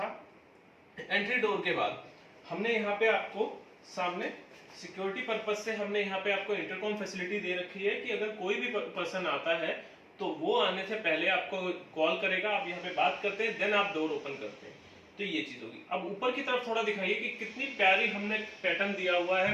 एंट्री डोर के बाद हमने यहाँ पे आपको सामने सिक्योरिटी पर्पज से हमने यहाँ पे आपको इंटरकॉम फैसिलिटी दे रखी है कि अगर कोई भी पर्सन आता है तो वो आने से पहले आपको कॉल करेगा, आप यहाँ पे बात करते हैं, देन आप डोर ओपन करते हैं। तो ये चीज होगी। अब ऊपर की तरफ थोड़ा दिखाइए कि कितनी प्यारी हमने पैटर्न दिया हुआ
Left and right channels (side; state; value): both; identical; correlation 1.00